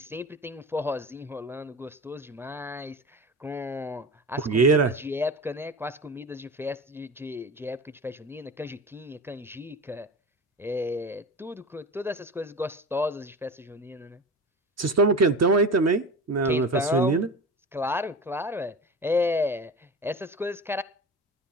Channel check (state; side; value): normal; both; correlation 0.30